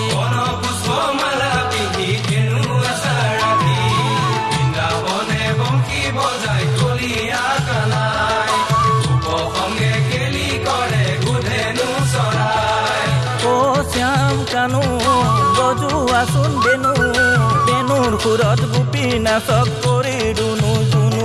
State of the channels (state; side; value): noise; left; hum, 30 dB below the sound